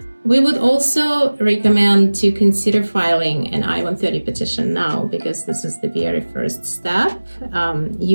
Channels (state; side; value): inverted; both; correlation -1.00